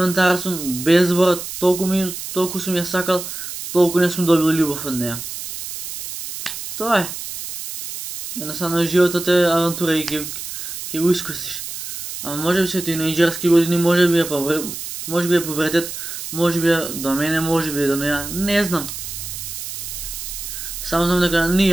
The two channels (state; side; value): noise; right; hiss, 8 dB below the sound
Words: сум, без збора, толку сум ја сакал, толку не сум добил љубов од неја. Тоа е. Едноставно животот е авантура и ќе го искусиш. Ама може би се тинејџерски години, може би е пубертет, може би е до мене, може би е до неја, не знам. Само знам дека ни